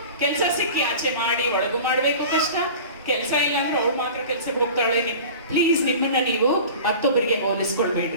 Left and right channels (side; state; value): both; inverted; correlation -0.38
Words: ಕೆಲಸ ಸಿಕ್ಕಿ ಆಚೆ ಮಾಡಿ ಒಳಗು ಮಾಡ್ಬೇಕು ಕಷ್ಟ, ಕೆಲಸ ಇಲ್ಲ ಅಂದ್ರೆ ಅವ್ರು ಮಾತ್ರ ಕೆಲ್ಸಕ್ಕೆ ಹೋಗ್ತಾಳೆ. ಪ್ಲೀಸ್ ನಿಮ್ಮನ್ನ ನೀವು ಮತ್ತೊಬ್ಬರಿಗೆ